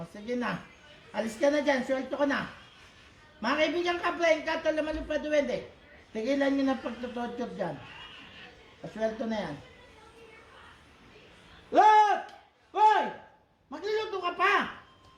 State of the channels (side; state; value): both; identical; correlation 1.00